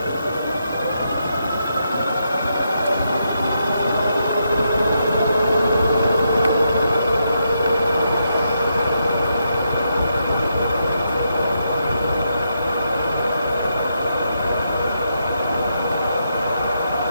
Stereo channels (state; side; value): inverted; both; correlation -0.81